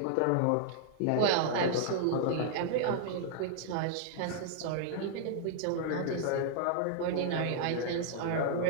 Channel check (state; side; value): different; both; correlation -0.01